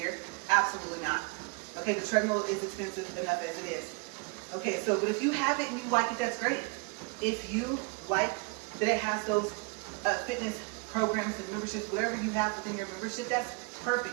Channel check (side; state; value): left; quieter; 30.4 dB